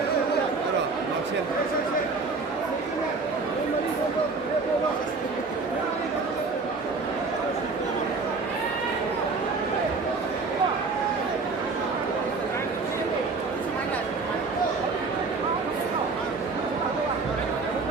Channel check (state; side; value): quieter; left; 4.2 dB